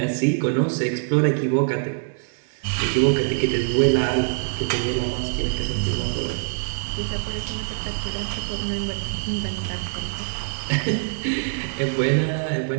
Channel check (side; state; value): left; silent; digital silence